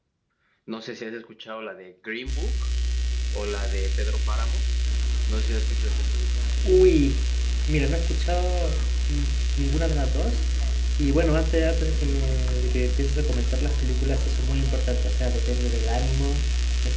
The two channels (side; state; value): both; identical; correlation 1.00